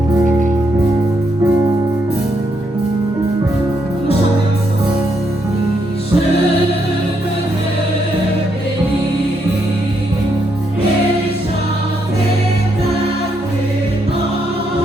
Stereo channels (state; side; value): normal; both; correlation 0.77